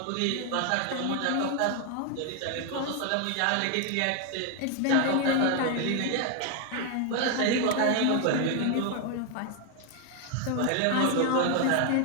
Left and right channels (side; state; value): both; different; correlation 0.01